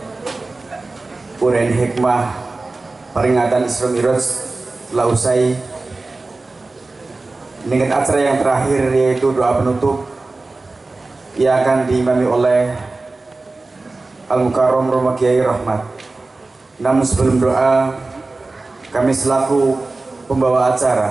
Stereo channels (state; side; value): quieter; left; 3.4 dB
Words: Urein hikmah peringatan Isra Mi'raj telah usai. Dengan acara yang terakhir yaitu doa penutup yang akan diimami oleh Al-Mukarram Romo Kiai Rahmat. Namun sebelum doa, kami selaku pembawa